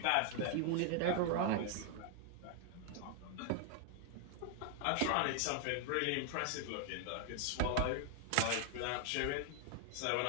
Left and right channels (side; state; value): both; different; correlation 0.00